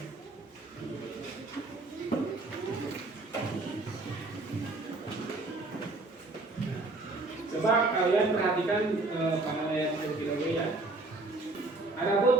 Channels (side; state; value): left; quieter; 3.2 dB